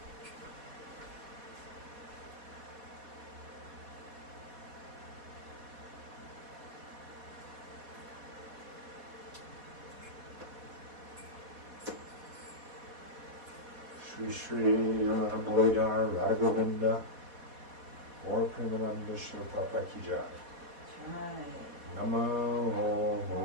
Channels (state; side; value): late; left; 4.1 ms